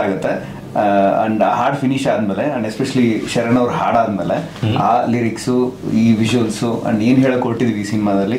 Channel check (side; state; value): both; identical; correlation 1.00